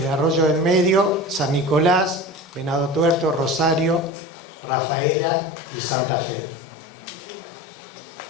Arroyo del Medio, San Nicolás, Venado Tuerto, Rosario, Rafaela y Santa Fe.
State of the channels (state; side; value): drops out; right; at 4.1 s